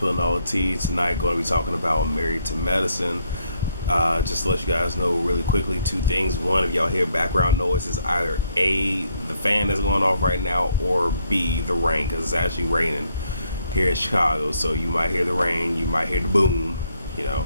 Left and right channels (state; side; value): inverted; both; correlation -0.72